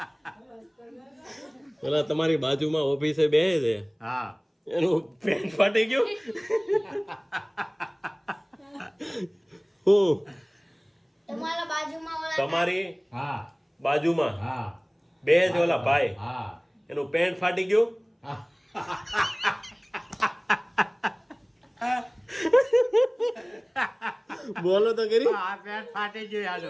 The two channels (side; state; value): both; identical; correlation 1.00